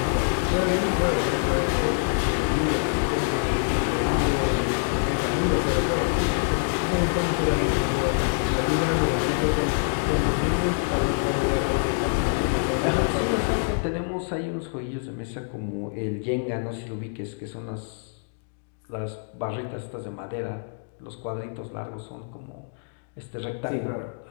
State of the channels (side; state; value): right; silent; digital silence